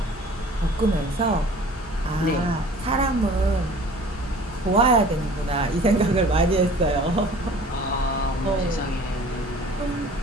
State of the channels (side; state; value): both; normal; correlation 0.47